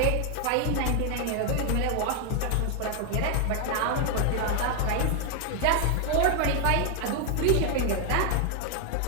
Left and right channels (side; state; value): both; different; correlation 0.00